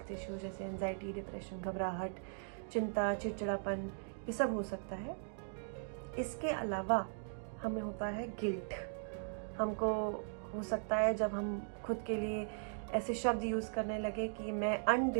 इश्यूज जैसे एंजाइटी, डिप्रेशन, घबराहट, चिंता, चिड़चिड़ापन, ये सब हो सकता है। इसके अलावा हमें होता है गिल्ट। हमको हो सकता है जब हम खुद के लिए ऐसे शब्द यूज करने लगे कि मैं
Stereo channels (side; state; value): left; silent; digital silence